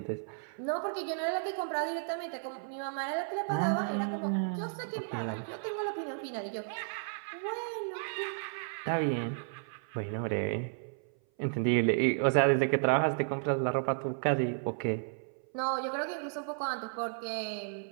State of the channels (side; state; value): left; silent; 56 dB below the other